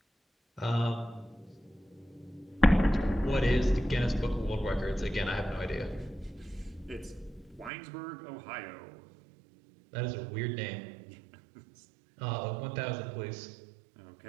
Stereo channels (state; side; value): drops out; left; at 7.7 s